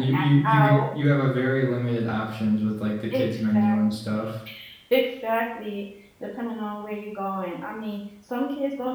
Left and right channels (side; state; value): both; identical; correlation 1.00